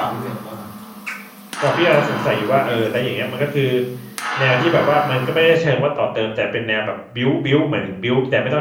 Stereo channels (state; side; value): identical; both; correlation 1.00